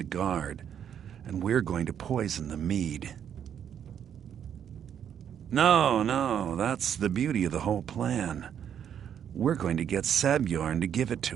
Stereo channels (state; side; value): quieter; left; 8.9 dB